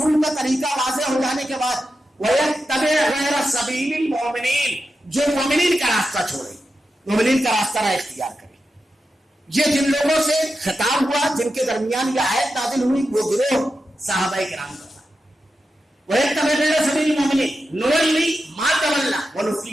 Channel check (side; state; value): both; normal; correlation 0.90